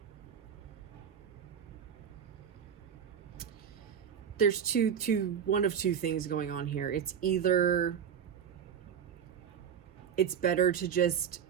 There's one of two things going on here. It's either it's better to just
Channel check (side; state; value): left; quieter; 8.1 dB